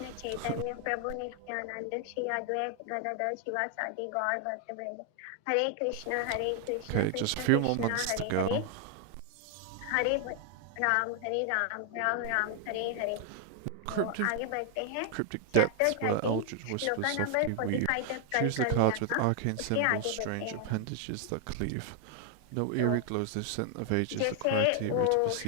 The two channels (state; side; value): different; both; correlation 0.00